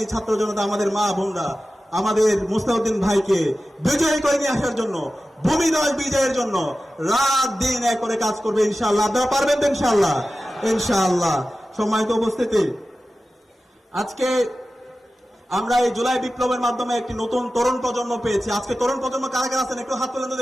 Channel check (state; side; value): normal; both; correlation 0.94